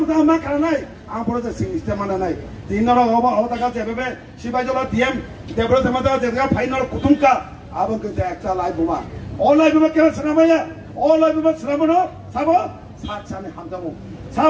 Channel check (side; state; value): both; identical; correlation 1.00